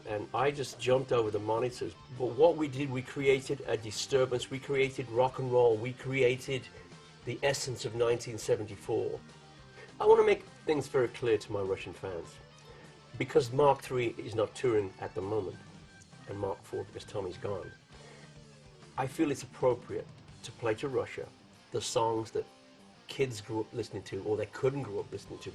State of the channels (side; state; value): both; identical; correlation 1.00